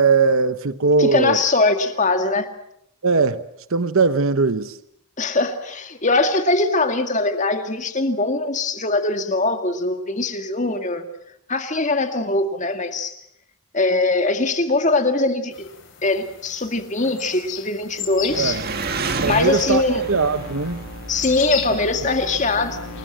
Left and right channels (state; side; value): normal; both; correlation -0.08